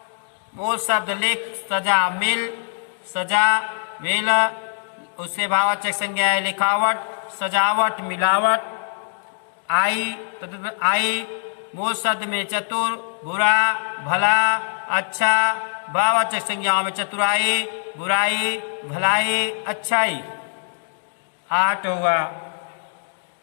मूल शब्द लिख सजा मिल सजा वेल। उससे भाववाचक संज्ञाएं लिखावट सजावट मिलावट। आई मूल शब्द में चतुर बुरा भला अच्छा। भाववाचक संज्ञाओं में चतुराई बुराई भलाई अच्छाई। आहट हुआ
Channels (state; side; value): silent; right; digital silence